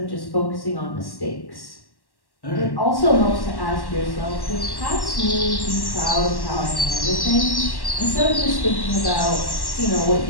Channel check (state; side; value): late; right; 1.1 ms